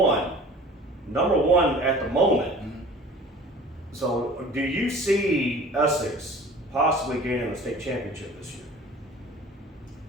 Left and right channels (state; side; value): normal; both; correlation 0.44